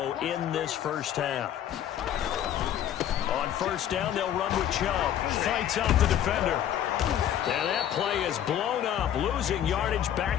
in this 1st half. On 1st down, they'll run with Chubb. Fights off the defender. And that play is blown up, losing yardage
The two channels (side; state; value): right; quieter; 10.6 dB